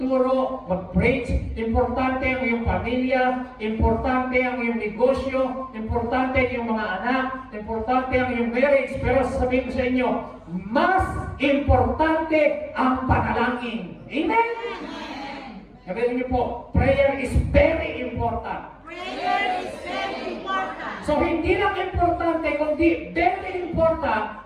mag-preach, importante ang iyong pamilya, importante ang iyong negosyo, importante ang iyong mga anak, importante ang iyong marriage. Pero sasabihin ko sa inyo, mas importante ang panalangin. Amen? Sabihin niyo po, prayer is very important. Prayer is very important. So hindi lang importante, kundi very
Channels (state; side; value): identical; both; correlation 1.00